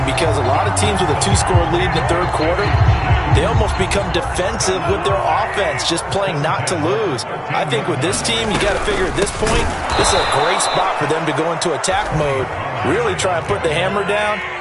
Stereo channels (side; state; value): both; identical; correlation 1.00